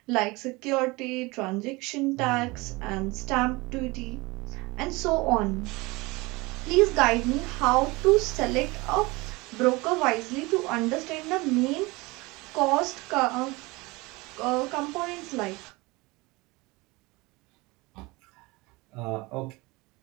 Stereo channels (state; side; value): quieter; left; 23.6 dB